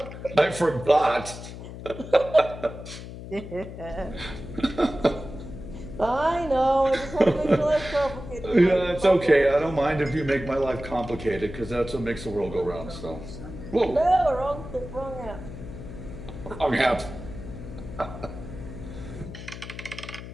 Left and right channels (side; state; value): left; noise; hum, 11 dB below the sound